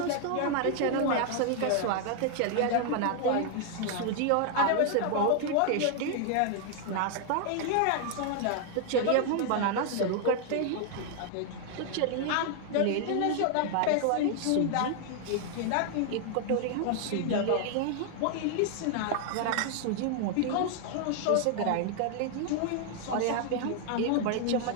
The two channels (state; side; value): different; both; correlation 0.00